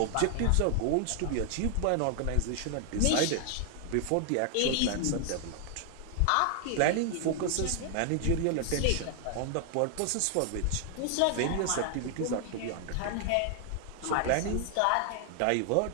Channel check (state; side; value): different; both; correlation 0.00